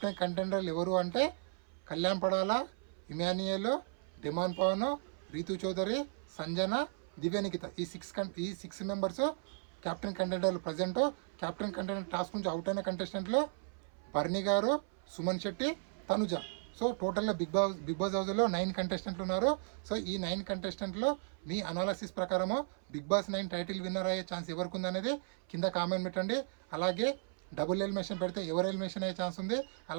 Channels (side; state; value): left; silent; 54 dB below the other